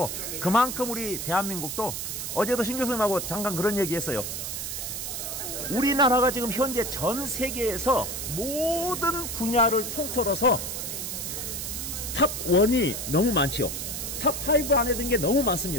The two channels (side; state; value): right; noise; hiss, 5 dB below the sound